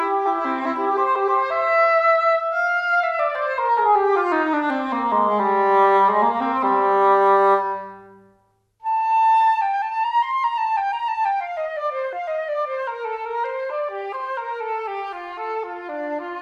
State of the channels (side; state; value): both; identical; correlation 1.00